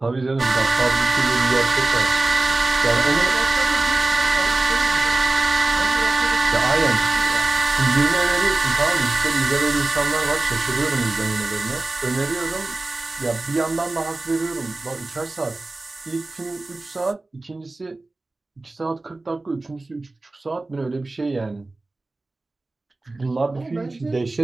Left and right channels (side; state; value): left; quieter; 3.2 dB